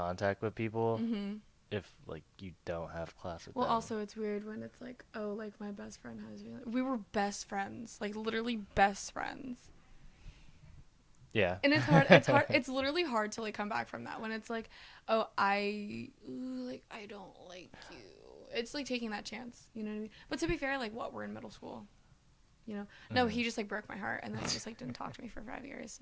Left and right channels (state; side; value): identical; both; correlation 1.00